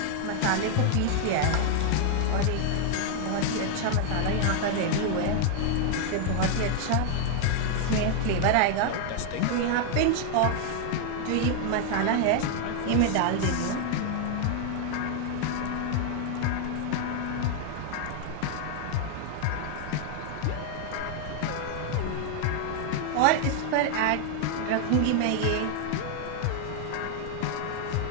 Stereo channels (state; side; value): different; both; correlation 0.00